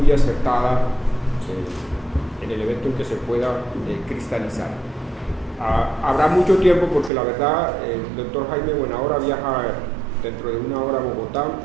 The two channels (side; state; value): left; drops out; at 7.1 s